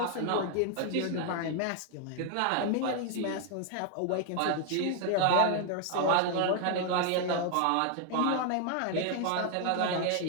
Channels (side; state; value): both; different; correlation 0.00